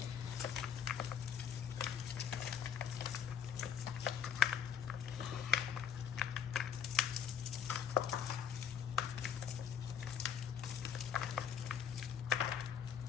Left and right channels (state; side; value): quieter; right; 7.9 dB